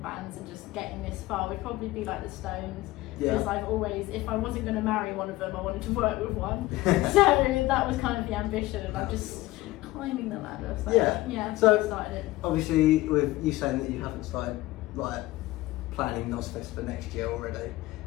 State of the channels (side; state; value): right; quieter; 18.2 dB